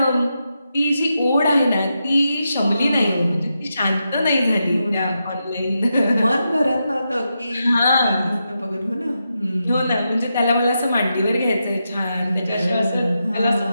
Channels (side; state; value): both; inverted; correlation -0.86